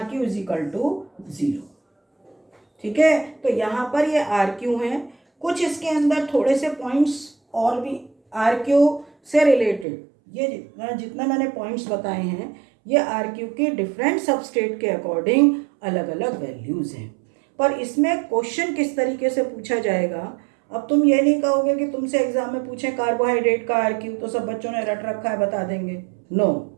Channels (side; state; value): left; drops out; at 9.9 s